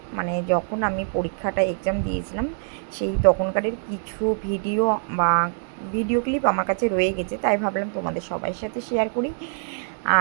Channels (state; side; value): silent; left; digital silence